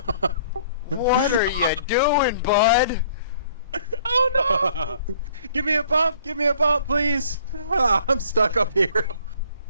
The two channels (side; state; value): both; inverted; correlation -0.57